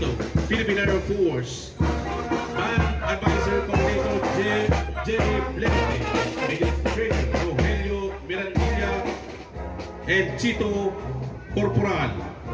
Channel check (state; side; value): identical; both; correlation 1.00